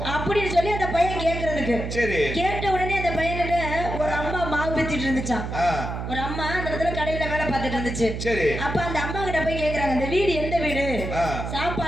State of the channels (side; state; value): right; noise; hum, 5 dB below the sound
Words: அப்படின்னு சொல்லி அந்த பையன் கேட்கறதுக்கு. கேட்ட உடனே அந்த பையன்கிட்ட ஒரு அம்மா மாவு பித்திட்டு இருந்துச்சான். ஒரு அம்மா அந்த இடத்துல கடையில வேலை பார்த்துட்டு இருந்துச்சு. அப்ப அந்த அம்மா கிட்ட போய் கேக்குறாங்க, இந்த வீடு எந்த வீடு,